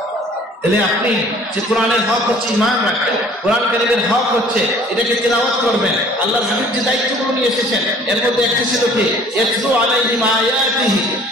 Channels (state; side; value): normal; both; correlation 0.52